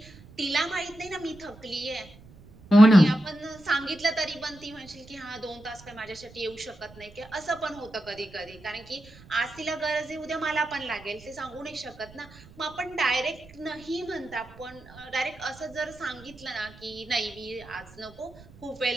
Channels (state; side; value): noise; right; rumble, 22 dB below the sound